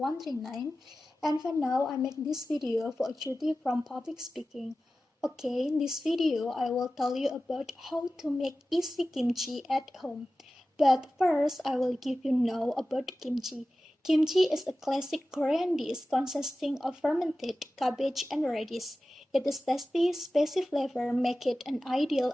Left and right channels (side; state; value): both; normal; correlation 0.95